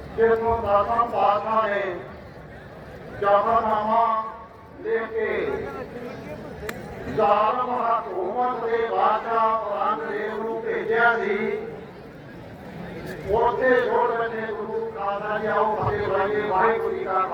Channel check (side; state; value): both; identical; correlation 1.00